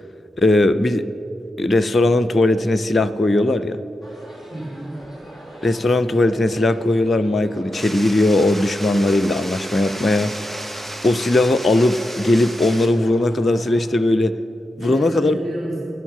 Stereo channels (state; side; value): normal; both; correlation 0.87